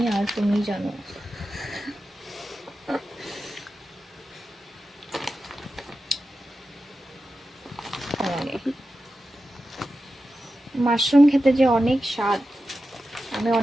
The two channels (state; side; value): normal; both; correlation 0.92